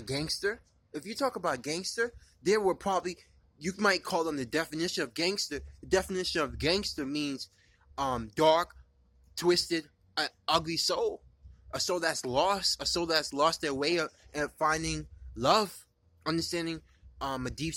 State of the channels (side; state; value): both; identical; correlation 1.00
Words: gangster. If you talk about gangster, they were probably, you might call them the definition of gangster. The definition of gangster means dark, twisted, ugly soul. A soul that's lost their way of finding love, understanding a deep